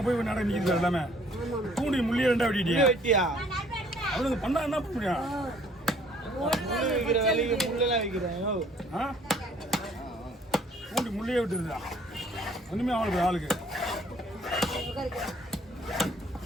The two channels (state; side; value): normal; both; correlation 0.59